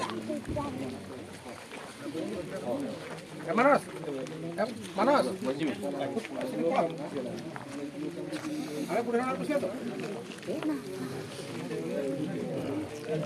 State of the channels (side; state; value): both; identical; correlation 1.00